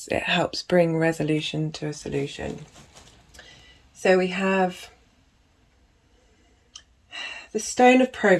it helps bring resolution to a solution. So we have the stone of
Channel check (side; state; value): both; identical; correlation 1.00